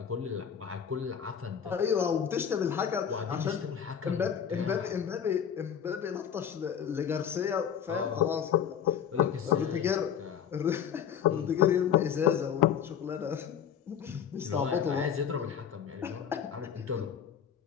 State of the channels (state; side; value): quieter; right; 8.3 dB